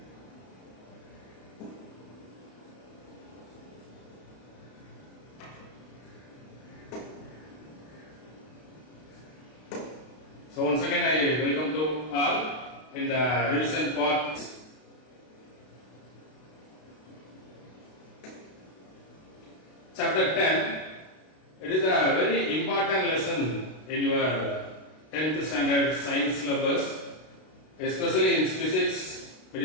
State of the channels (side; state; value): right; late; 32 ms